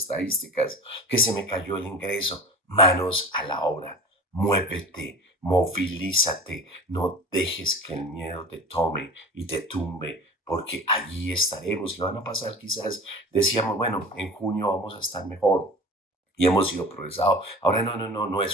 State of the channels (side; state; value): both; normal; correlation 0.36